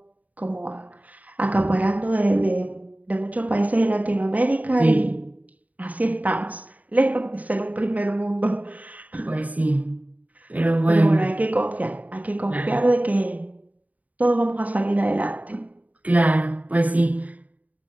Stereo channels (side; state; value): left; late; 0.074 ms